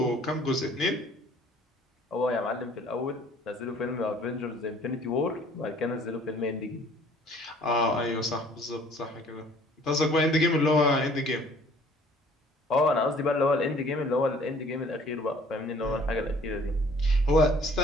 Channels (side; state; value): both; normal; correlation 0.55